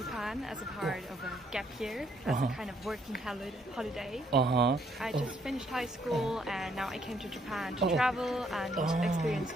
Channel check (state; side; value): normal; both; correlation 0.70